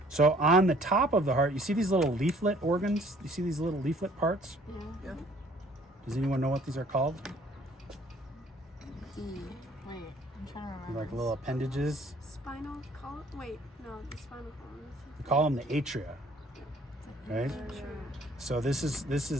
So on the top of the heart, you see these little leaflet organs? You see these little leaflet parts? Yeah. Does anyone know what these are called? Wait, I'm trying to remember. Like little appendages. Spinal column? Wait, no, the spinal column. We call them the atria, right? So this is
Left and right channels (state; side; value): normal; both; correlation 0.58